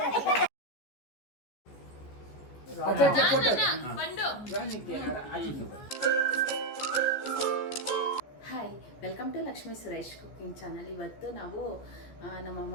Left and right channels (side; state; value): right; late; 14 ms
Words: अच्छा photo hi welcome to Lakshmi Suresh cooking channel. ಇವತ್ತು ನಾವು ನಮ್ಮ